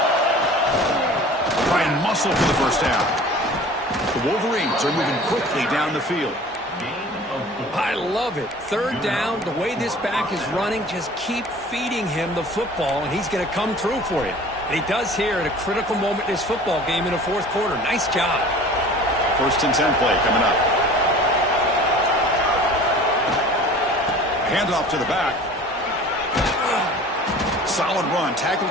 Try and muscle for the first down. The Wolverines are moving quickly down the field. I love it. Third down, the way this back is running, just keep feeding him the football, and he's going to come through for you. And he does here at a critical moment in this football game in the fourth quarter. Nice job. First and 10 play coming up. Handoff to the back. Solid run, tackled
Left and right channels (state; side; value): normal; both; correlation 0.44